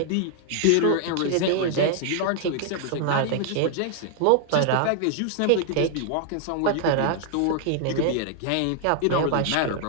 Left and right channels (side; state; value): both; different; correlation 0.00